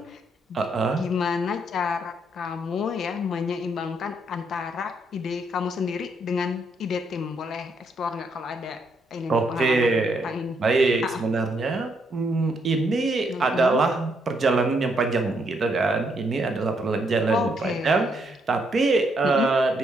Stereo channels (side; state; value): both; normal; correlation 0.74